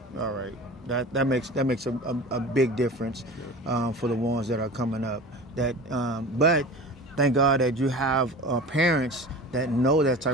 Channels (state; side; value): normal; both; correlation 0.35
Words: All right. That makes a big difference for the ones that are coming up. But thank God that you have parents that know that